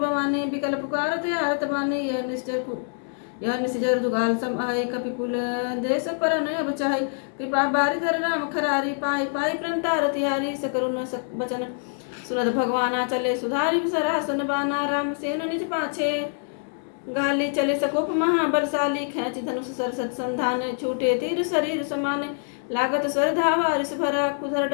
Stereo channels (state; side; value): silent; right; 62 dB below the other